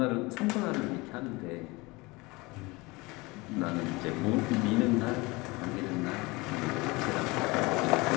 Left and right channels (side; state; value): right; quieter; 23.9 dB